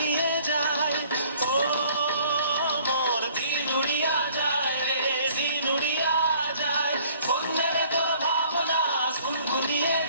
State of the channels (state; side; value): inverted; both; correlation -0.56